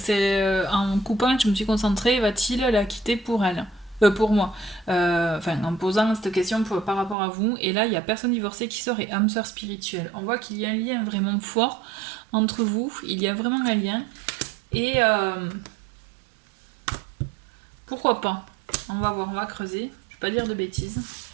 en coupant, je me suis concentrée, va-t-il la quitter pour elle? Pour moi. Enfin, en posant cette question par rapport à vous. Et là, il y a personne divorcée qui sort et âme sœur spirituelle. On voit qu'il y a un lien vraiment fort entre vous. Il y a vraiment un lien. Et pourquoi pas? On va voir, on va creuser. Je vais pas dire de bêtises.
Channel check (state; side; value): drops out; left; at 7.2 s